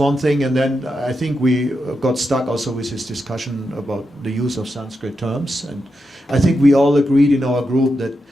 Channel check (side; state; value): both; normal; correlation 0.86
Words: thing, and then I think we got stuck also with this discussion about the use of Sanskrit terms, and I think we all agreed in our group that